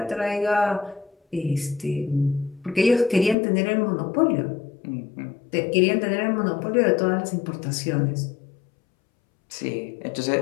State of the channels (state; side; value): drops out; right; at 3.4 s